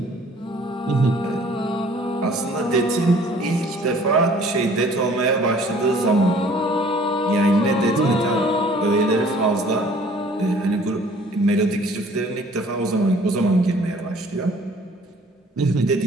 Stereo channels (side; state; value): both; normal; correlation 0.54